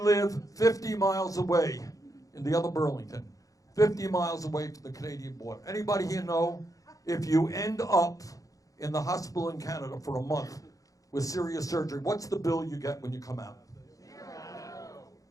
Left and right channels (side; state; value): right; late; 0.17 ms